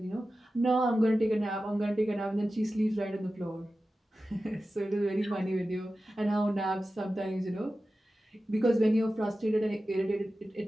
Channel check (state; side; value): normal; both; correlation 0.94